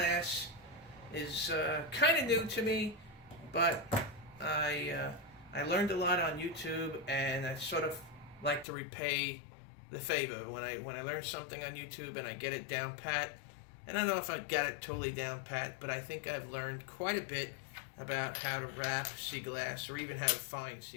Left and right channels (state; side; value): drops out; right; at 8.7 s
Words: is kind of new to me, but I learned a lot on YouTube, and I sort of like to repay the favor when I learn something on YouTube and I get it down pat. And I don't know if I got it totally down pat, but I think I've learned quite a bit about how to wrap sea glass or even how to find